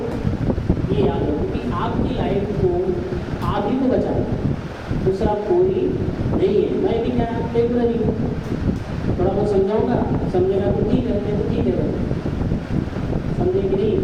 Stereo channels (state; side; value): identical; both; correlation 1.00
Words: ये याद रखो कि आपकी लाइफ को आप ही को बचाना, दूसरा कोई नहीं है। मैं भी क्या टेम्पररी हूँ, थोड़ा बहुत समझाऊंगा, समझेगा तो ठीक है, नहीं तो ठीक है, समझे कि नहीं?